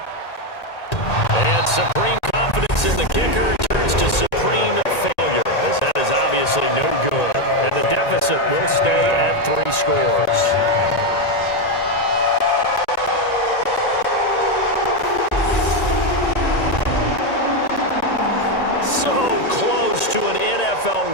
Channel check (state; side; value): late; right; 1.9 ms